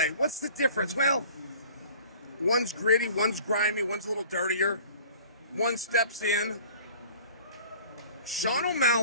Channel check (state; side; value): inverted; both; correlation -0.47